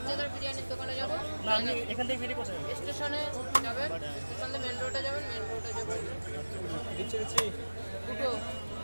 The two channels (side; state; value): both; inverted; correlation -1.00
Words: বিরিয়ানির দোকানে যাবো না আমি এখান থেকে বেরিয়ে কোথায় স্টেশনে যাবেন স্টেশন থেকে মেন রোডে যাবেন মেন রোডে যাবেন দুটো